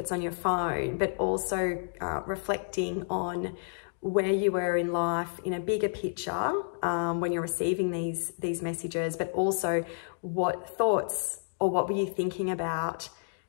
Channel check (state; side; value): silent; right; digital silence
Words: on your phone, but also reflecting on where you were in life in a bigger picture when you're receiving these messages, but also what thoughts or what were you thinking about